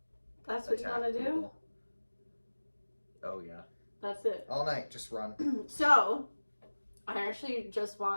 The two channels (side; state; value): both; inverted; correlation -1.00